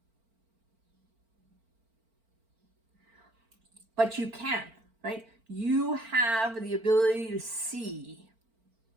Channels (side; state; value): left; late; 4.4 ms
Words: But you can, right? You have the ability to see